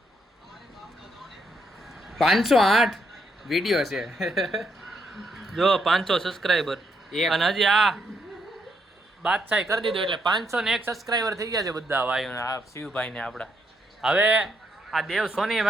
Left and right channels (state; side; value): normal; both; correlation 0.76